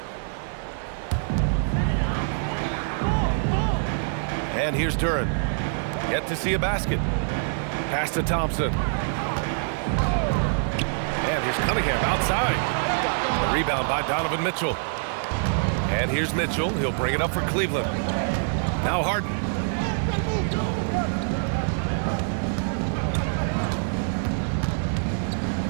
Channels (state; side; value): silent; left; digital silence